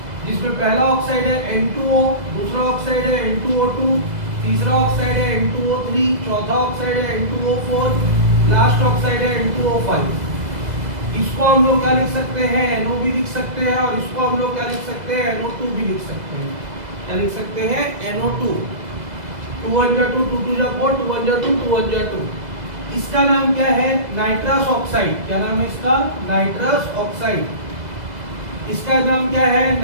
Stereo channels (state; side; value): late; left; 2.0 ms